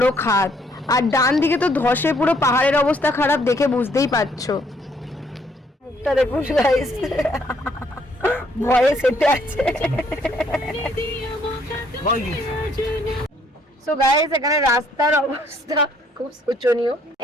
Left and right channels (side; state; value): both; normal; correlation 0.66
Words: খাদ, আর ডান দিকে তো ধসে পুরো পাহাড়ের অবস্থা খারাপ, দেখে বুঝতেই পারছো। মুখটা দেখুন গাইস, ভয়ে সেটে আছে। সো গাইস এখানে রাস্তার অবস্থা খুব শোচনীয়।